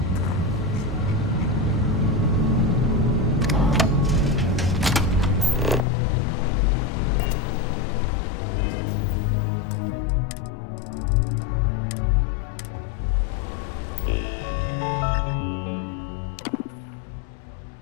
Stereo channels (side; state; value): right; drops out; at 5.9 s